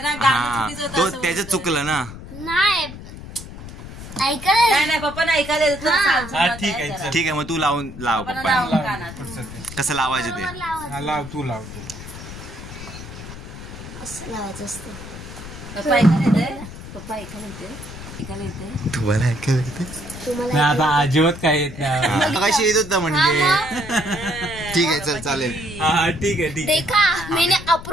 ना. गाणं हा चुकीचं होतं तो असं त्याचं बोलतोय. चुकलं ना. नाही ऐकायला. नाही नाही पप्पानं ऐकायला येत होतं. हा. असं हा, मत ठीक आहे आहे, जरा. चल. ठीक आहे मग तू लाव पप्पानं पप्पा. लावून कानात. पुढचं ते. कसं लावायचं ते. हा, लाव तू लाव तू. असं लावायचं असतं. पप्पा ऐकायला येते. पप्पा ऐकायला येते. ऐकायला येते. तुम्हाला ऐकायला येतं? तुम्हाला नाही, आता अजिबात काय येत नाही. कशी येत होता म्हणजे. ठीक आहे चल चालेल. हा ठीक आहे ठीक आहे. देखा मैंने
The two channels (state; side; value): noise; left; rumble, 13 dB below the sound